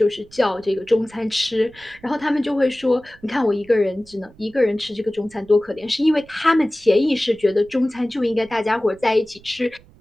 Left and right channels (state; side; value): noise; right; rumble, 26 dB below the sound